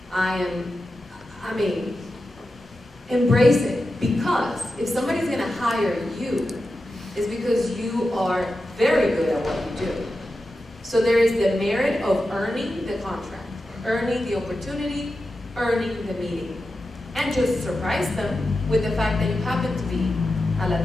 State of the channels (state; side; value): normal; both; correlation 0.91